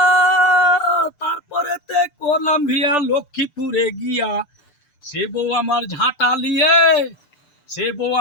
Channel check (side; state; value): right; late; 6.8 ms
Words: তারপরেতে করলাম বিয়া লক্ষ্মীপুরে গিয়া। সে বউ আমার ঝাঁটা লিয়ে, সে বউ